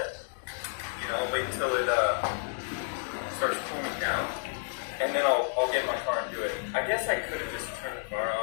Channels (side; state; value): right; silent; digital silence